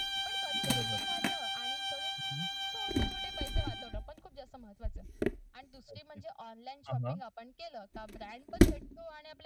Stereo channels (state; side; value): identical; both; correlation 1.00